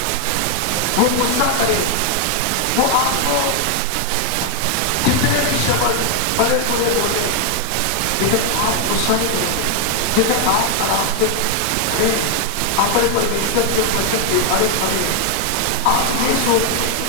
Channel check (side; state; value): both; different; correlation 0.01